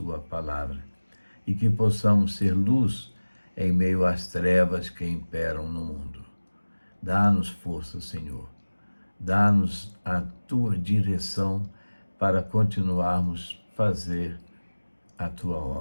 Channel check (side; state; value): both; inverted; correlation -1.00